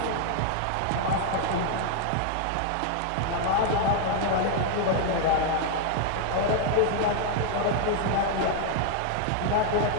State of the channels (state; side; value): different; both; correlation 0.00